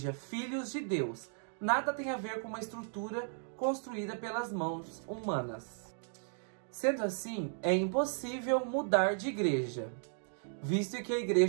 filhos de Deus. Nada tem a ver com uma estrutura construída pelas mãos humanas. Sendo assim, é impossível mudar de igreja, visto que a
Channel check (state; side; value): silent; left; digital silence